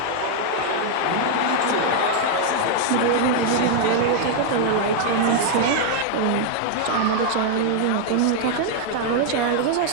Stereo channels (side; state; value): both; different; correlation 0.00